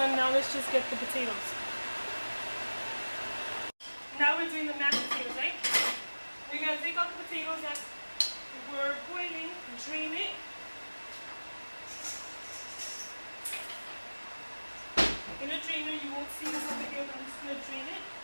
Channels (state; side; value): inverted; both; correlation -1.00